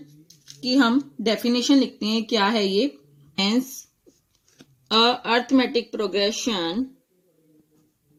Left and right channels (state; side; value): identical; both; correlation 1.00